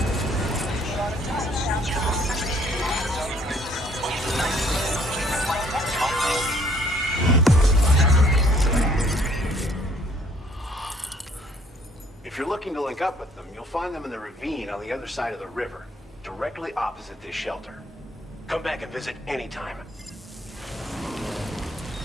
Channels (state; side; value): normal; both; correlation 0.62